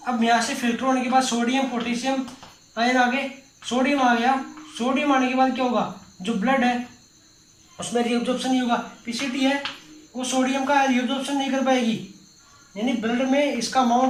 अब यहाँ से फिल्टर होने के बाद सोडियम पोटेशियम आयन आगे, सोडियम आ गया, सोडियम आने के बाद क्या होगा, जो ब्लड है उसमें रीअब्जॉर्प्शन नहीं होगा, पीसीटी है वो सोडियम का रीअब्जॉर्प्शन नहीं कर पाएगी, यानी ब्लड में इसका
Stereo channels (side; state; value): both; identical; correlation 1.00